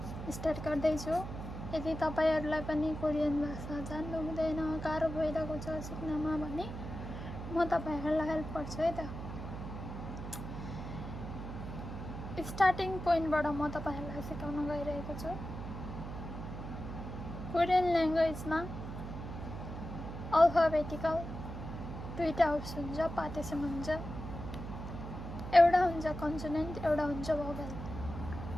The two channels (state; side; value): noise; right; hum, 8 dB below the sound